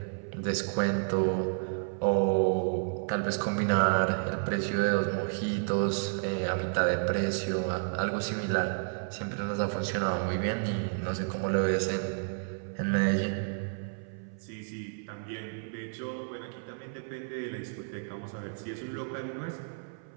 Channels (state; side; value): silent; left; 57 dB below the other